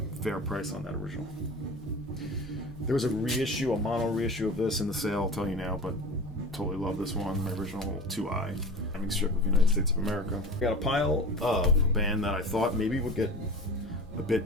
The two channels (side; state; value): both; normal; correlation 0.35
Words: fair price on that original. There was a mono reissue of this in the sale, I'll tell you now, but totally love this one, my original 2i, having strip of United States of America. I got a pile of a band that I thought maybe would get a